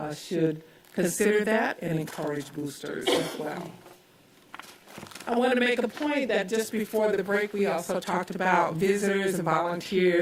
should consider that and encourage boosters as well. I want to make a point that just before the break, we also talked about visitors and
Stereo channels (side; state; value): both; identical; correlation 1.00